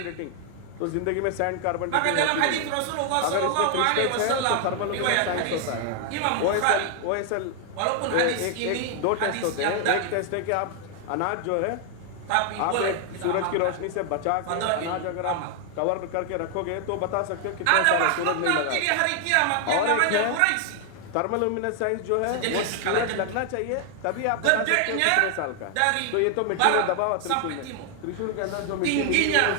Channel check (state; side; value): different; both; correlation 0.00